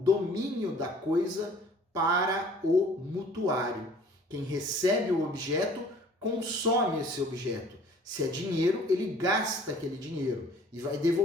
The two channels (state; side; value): normal; both; correlation 0.52